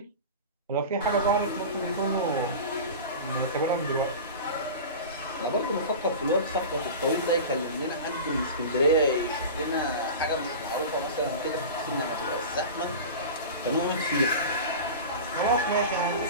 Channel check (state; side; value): inverted; both; correlation -0.31